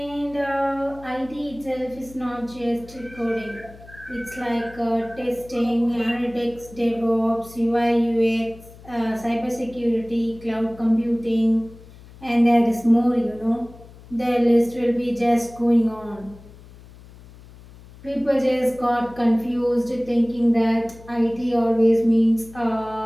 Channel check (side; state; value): left; noise; hum, 21 dB below the sound